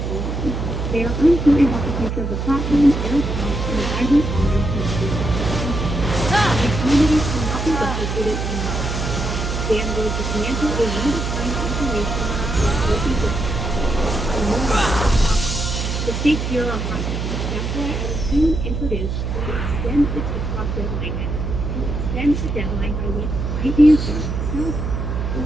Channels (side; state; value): right; noise; hum, 2 dB below the sound